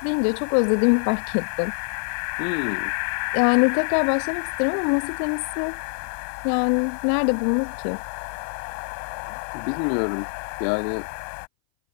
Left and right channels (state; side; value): silent; right; 60 dB below the other